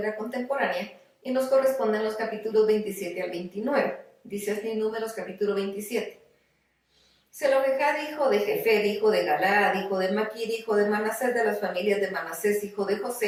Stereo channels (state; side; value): identical; both; correlation 1.00